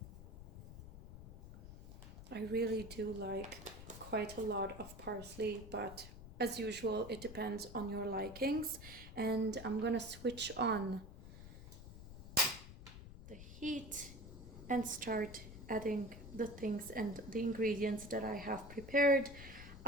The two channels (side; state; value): left; noise; rumble, 13 dB below the sound